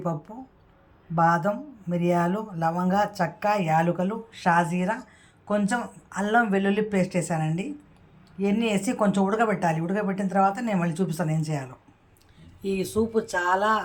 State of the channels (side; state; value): both; identical; correlation 1.00